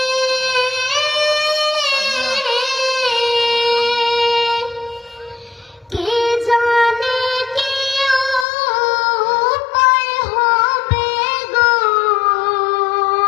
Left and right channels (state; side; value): drops out; right; at 8.5 s